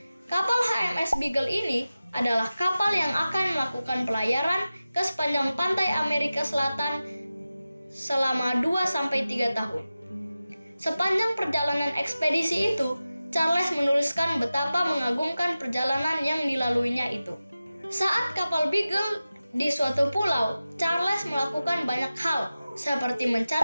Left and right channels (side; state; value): both; inverted; correlation -0.95